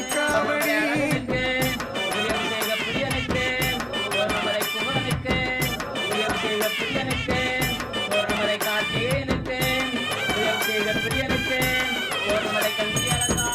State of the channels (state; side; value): identical; both; correlation 1.00